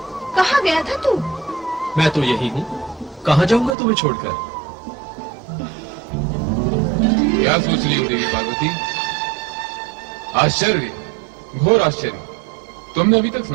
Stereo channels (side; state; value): left; drops out; at 3.8 s